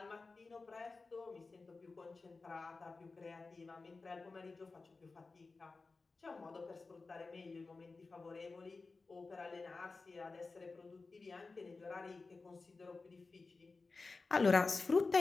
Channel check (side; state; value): right; quieter; 3.9 dB